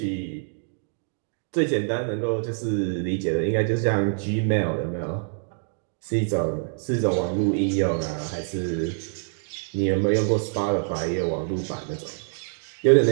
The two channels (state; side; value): silent; left; 61 dB below the other